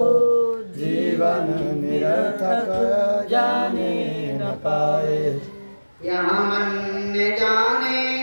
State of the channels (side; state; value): both; inverted; correlation -1.00